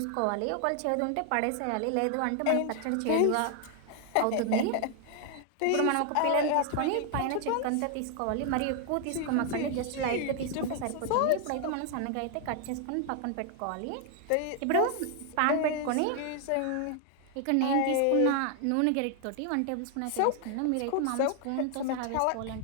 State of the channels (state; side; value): different; both; correlation 0.00